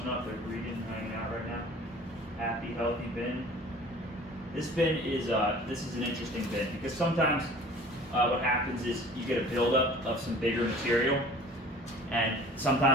up. They're breeding, hanging out right now. Happy, healthy bin. This bin is this is an interesting bin because sometimes what happens is you get a buildup of some bigger material. And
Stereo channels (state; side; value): normal; both; correlation 0.46